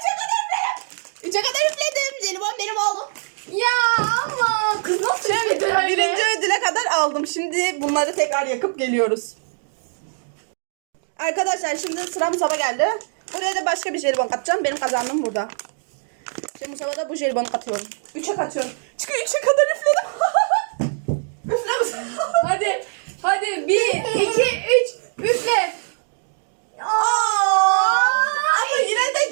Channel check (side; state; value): left; silent; digital silence